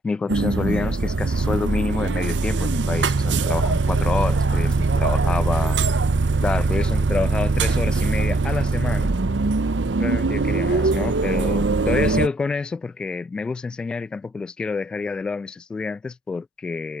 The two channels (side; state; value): both; normal; correlation 0.70